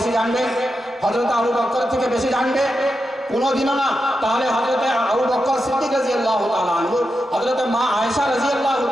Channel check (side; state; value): both; normal; correlation 0.88